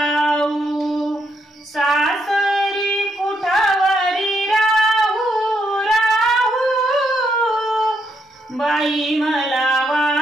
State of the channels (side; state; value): both; normal; correlation 0.77